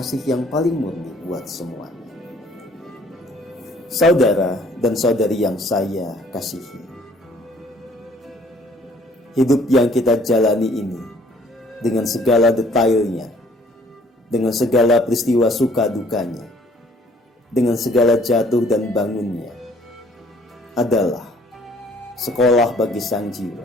yang paling murni buat semuanya. Saudara dan saudari yang saya kasihi, hidup yang kita jalani ini dengan segala detailnya, dengan segala peristiwa suka dukanya, dengan segala jatuh dan bangunnya, adalah sekolah bagi sang jiwa.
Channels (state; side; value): normal; both; correlation 0.59